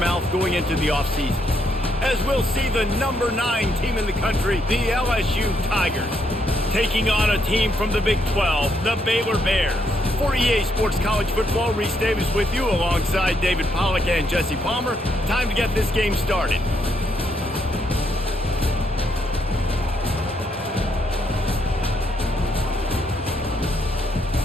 going into the offseason. As we'll see the number 9 team in the country, the LSU Tigers, taking on a team from the Big 12, the Baylor Bears. For EA Sports College Football, Reese Davis with you alongside David Pollack and Jesse Palmer. Time to get this game started.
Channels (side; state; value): both; normal; correlation 0.75